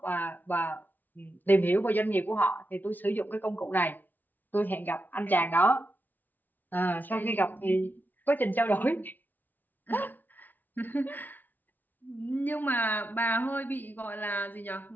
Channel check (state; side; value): late; right; 0.086 ms